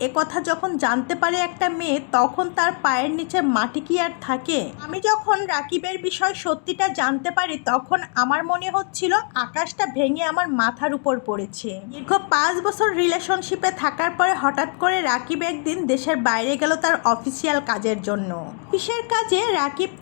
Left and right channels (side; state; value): right; quieter; 36.7 dB